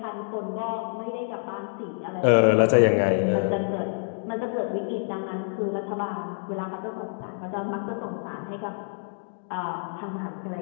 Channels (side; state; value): right; silent; 60 dB below the other